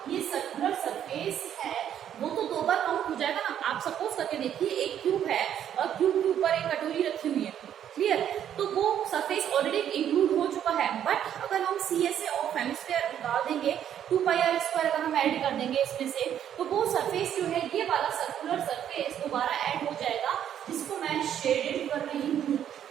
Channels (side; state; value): left; quieter; 9.9 dB